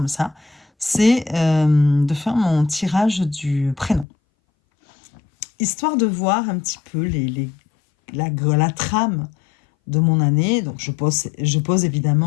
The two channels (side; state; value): right; drops out; at 4.0 s